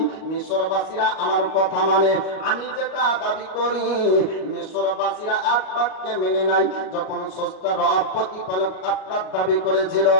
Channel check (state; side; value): late; right; 38 ms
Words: মিশরবাসীরা আমার কথা মানে, আমি যেটা দাবি করি মিশরবাসীরা এক বাক্যে মেনে নাই। যখন স্রষ্টা রব প্রতিপালক আপনার দাবি করেছিল